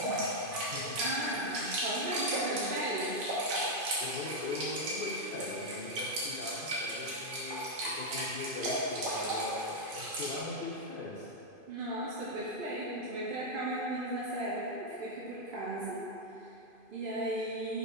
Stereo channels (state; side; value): late; left; 2.5 ms